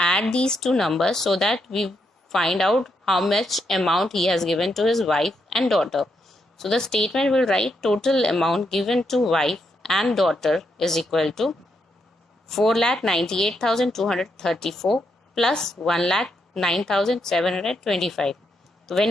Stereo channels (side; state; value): both; normal; correlation 0.80